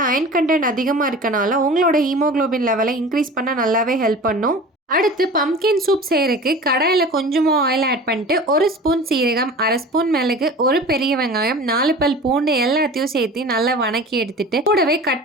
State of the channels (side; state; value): both; normal; correlation 0.38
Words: அயன் கண்டென்ட் அதிகமாக இருக்கனால உங்களோட ஹீமோகுளோபின் லெவலை இன்க்ரீஸ் பண்ண நல்லாவே ஹெல்ப் பண்ணும். அடுத்து பம்கின் சூப் செய்யறதுக்கு கடாயில் கொஞ்சமாக ஆயில் ஆட் பண்ணிட்டு 1 ஸ்பூன் சீரகம், 1/2 ஸ்பூன் மிளகு, 1 பெரிய வெங்காயம், 4 பல் பூண்டு எல்லாத்தையும் சேர்த்து நல்லா வணக்கி எடுத்துட்டு கூடவே கட்